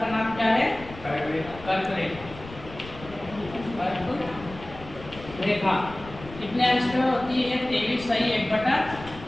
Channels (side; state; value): left; noise; rumble, 16 dB below the sound